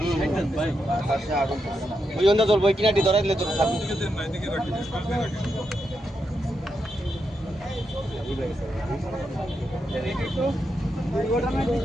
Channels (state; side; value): normal; both; correlation 0.84